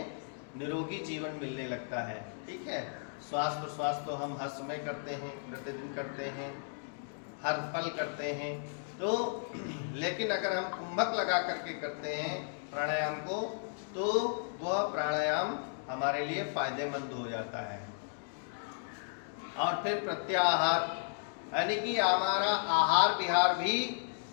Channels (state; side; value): silent; right; digital silence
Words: निरोगी जीवन मिलने लगता है। ठीक है। श्वास प्रश्वास तो हम हंस में करते हैं, प्रतिदिन करते हैं, हर पल करते हैं, तो लेकिन अगर हम कुंभक लगा करके करते हैं प्राणायाम को, तो वह प्राणायाम हमारे लिए फायदेमंद हो जाता है। और फिर प्रत्याहार, यानी कि हमारा आहार विहार भी